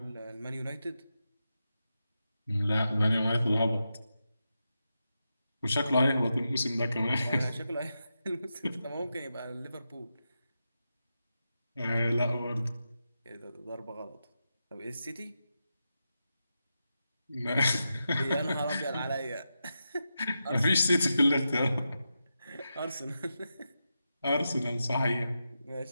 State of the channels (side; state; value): both; inverted; correlation -0.89